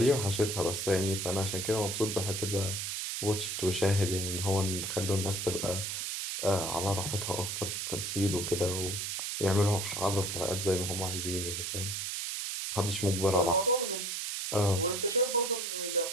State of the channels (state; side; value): noise; right; hiss, 3 dB below the sound